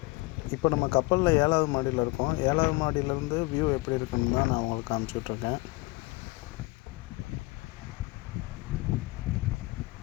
இப்போ நம்ம கப்பலில் 7வது மாடியில் இருக்கோம். 7வது மாடியிலேருந்து வியூ எப்படி இருக்குன்னு தான் நான் உங்களுக்கு காமிச்சிட்ருக்கேன்.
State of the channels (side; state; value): right; quieter; 23.4 dB